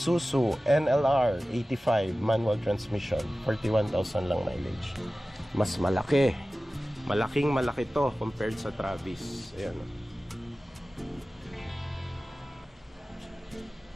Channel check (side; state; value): both; normal; correlation 0.96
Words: NLR 85 manual transmission, 41,000 lang mileage. Mas malaki. Malaking malaki to compared sa Travis. Ayan.